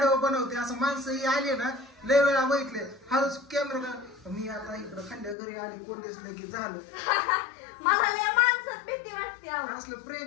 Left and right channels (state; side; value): drops out; right; at 5.4 s